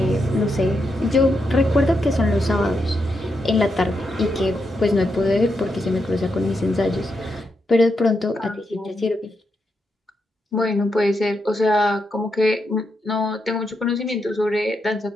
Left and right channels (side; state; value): both; normal; correlation 0.83